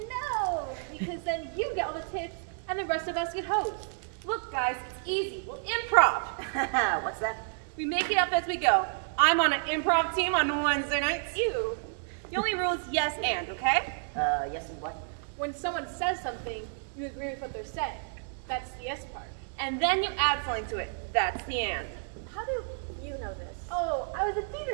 because then you get all the tips, and the rest of us get hosed. Look, guys, it's easy. We'll improv. What's that? We make it up as we go. I'm on an improv team on Wednesday nights. You. The only rule is yes and, okay? Yes and what? When someone says something, you agree with what they're saying. That's the yes part. And then you add something to it. That's the and. How do you know this? Oh, I was a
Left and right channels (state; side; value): silent; left; digital silence